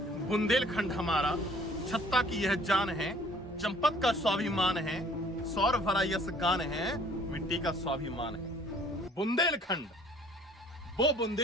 बुंदेलखंड हमारा, छत्ता की यह जान है, चंपत का स्वाभिमान है, सौर भरा यस गान है, मिट्टी का स्वाभिमान है। बुंदेलखंड, वो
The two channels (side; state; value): both; normal; correlation 0.55